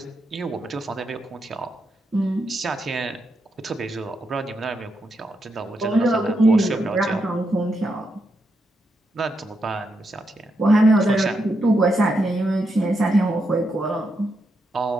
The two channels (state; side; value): normal; both; correlation 0.82